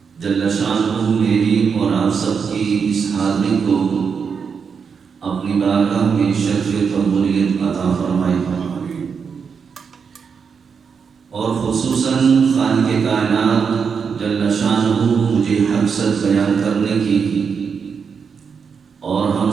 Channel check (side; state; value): left; quieter; 6.1 dB